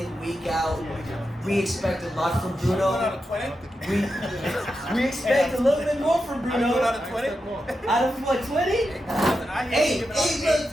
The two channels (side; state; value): both; normal; correlation 0.88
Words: week out. We expect a lot from Bruno. Out of 20? We expect a little bit more from Bruno. Out of 20? Out of what, 20? 8. I